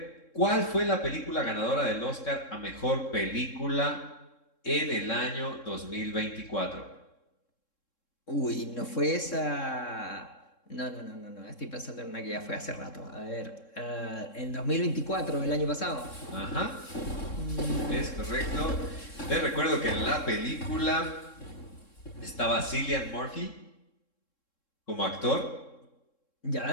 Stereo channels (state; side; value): late; right; 3.7 ms